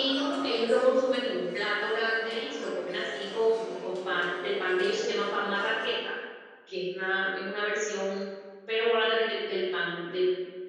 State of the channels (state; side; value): identical; both; correlation 1.00